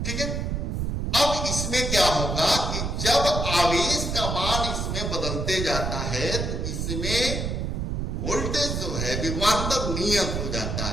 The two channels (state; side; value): noise; right; rumble, 2 dB below the sound